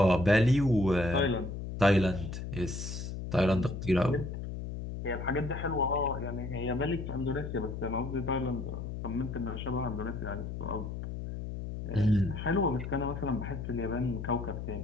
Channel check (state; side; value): noise; left; hum, 6 dB below the sound